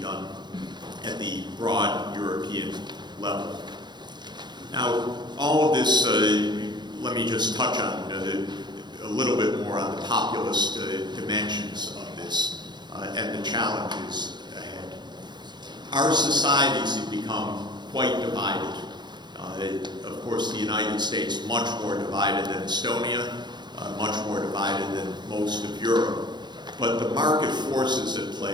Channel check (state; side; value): late; left; 0.21 ms